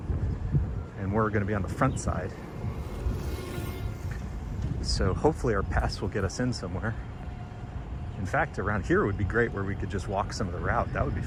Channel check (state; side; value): identical; both; correlation 1.00